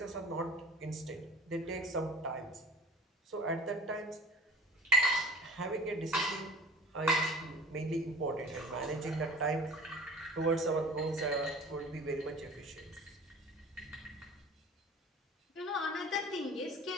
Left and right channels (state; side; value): normal; both; correlation 0.40